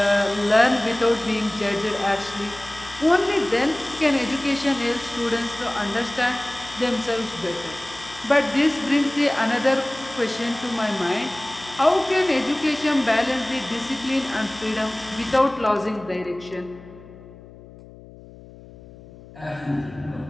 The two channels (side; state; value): left; noise; hum, 19 dB below the sound